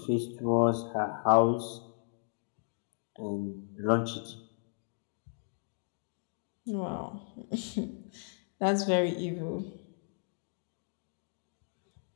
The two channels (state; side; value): silent; right; digital silence